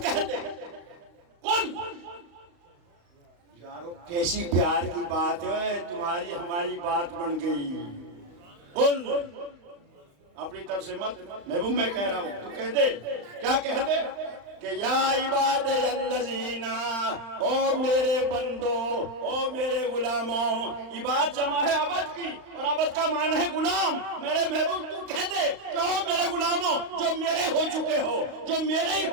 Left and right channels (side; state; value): left; late; 35 ms